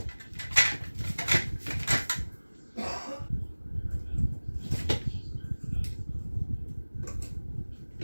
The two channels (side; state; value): both; inverted; correlation -1.00